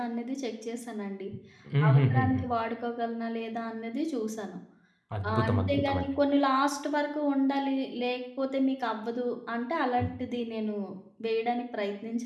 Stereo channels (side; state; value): both; identical; correlation 1.00